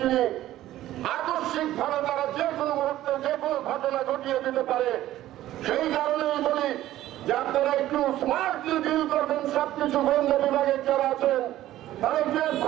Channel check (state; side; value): quieter; left; 14.1 dB